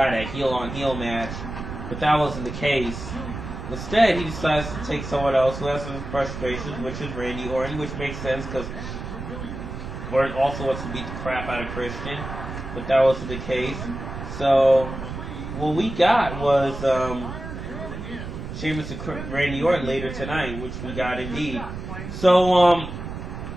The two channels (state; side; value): noise; right; rumble, 8 dB below the sound